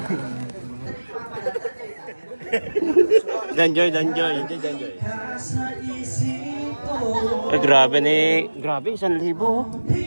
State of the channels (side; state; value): both; inverted; correlation -1.00